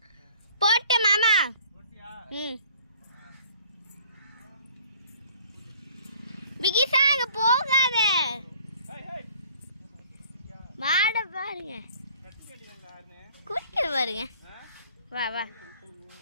போட்டேன் மாமா. பிகிசா அங்க போகாத, மாட பாருங்க, குடிக்கிற பாருங்க. வா வா,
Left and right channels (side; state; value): both; inverted; correlation -0.53